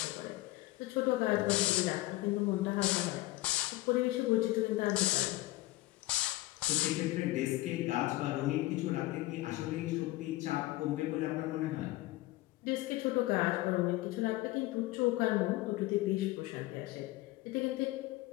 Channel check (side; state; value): right; quieter; 18.6 dB